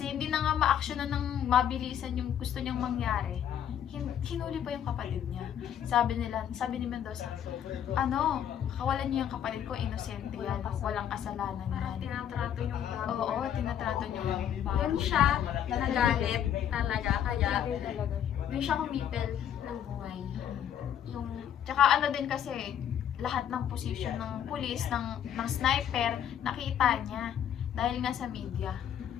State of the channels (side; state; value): right; quieter; 9.6 dB